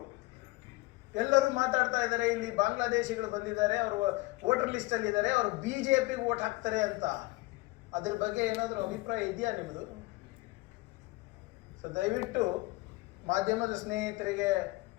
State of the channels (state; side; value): quieter; right; 22.0 dB